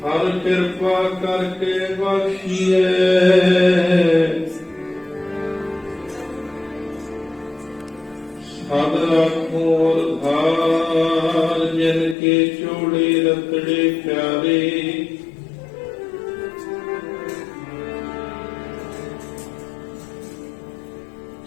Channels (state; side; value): drops out; right; at 12.2 s